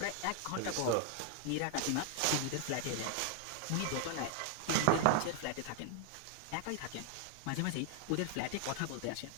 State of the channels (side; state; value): both; different; correlation 0.00